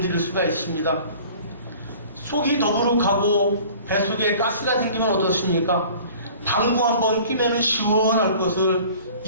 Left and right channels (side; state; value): both; inverted; correlation -0.47